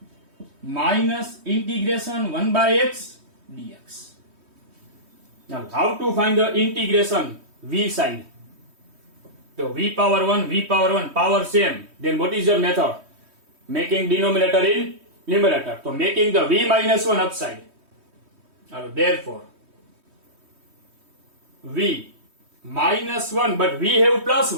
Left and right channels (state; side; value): late; left; 3.2 ms